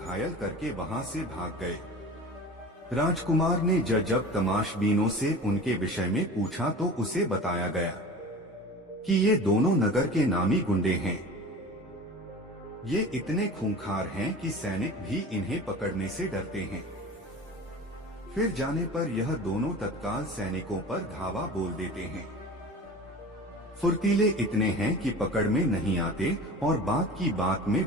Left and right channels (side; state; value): both; normal; correlation 0.37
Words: करके वहां से भाग गए। राजकुमार ने जब तमाशबीनों से उनके विषय में पूछा, तो उसे बताया गया कि ये दोनों नगर के नामी गुंडे हैं। ये इतने खूंखार हैं कि सैनिक भी इन्हें पकड़ने से डरते हैं। फिर जाने पर यह दोनों तत्काल सैनिकों पर धावा बोल देते हैं। फुर्तीले इतने हैं कि पकड़ में नहीं आते और बात की बात में